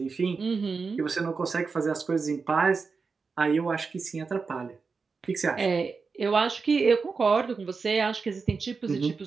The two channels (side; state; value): left; quieter; 4.8 dB